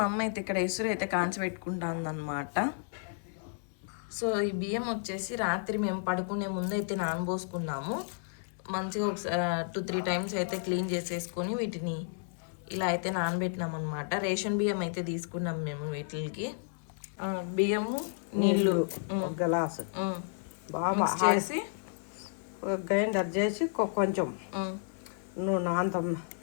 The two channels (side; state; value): right; silent; 56 dB below the other